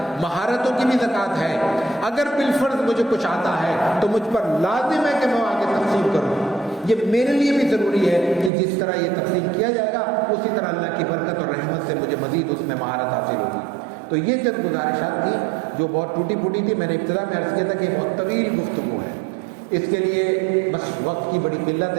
مہارتوں کی بھی زکوٰۃ ہے۔ اگر بالفرض مجھے کچھ آتا ہے تو مجھ پر لازم ہے کہ میں آگے تقسیم کروں۔ یہ میرے لیے بھی ضروری ہے کہ جس طرح یہ تقسیم کیا جائے گا اسی طرح اللہ کی برکت اور رحمت سے مجھے مزید اس میں مہارت حاصل ہوگی۔ تو یہ چند گزارشات تھیں جو بہت ٹوٹی پھوٹی تھی۔ میں نے ابتدا میں عرض کیا تھا کہ بہت طویل گفتگو ہے، اس کے لیے بس وقت کی بڑی قلت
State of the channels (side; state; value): left; drops out; at 8.5 s